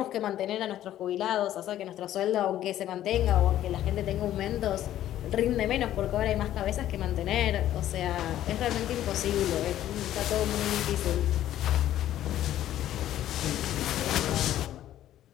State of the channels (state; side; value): quieter; right; 12.5 dB